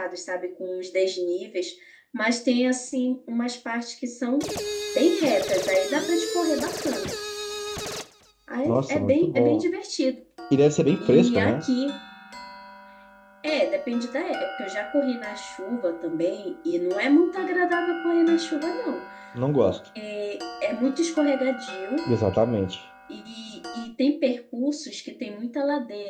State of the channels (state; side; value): identical; both; correlation 1.00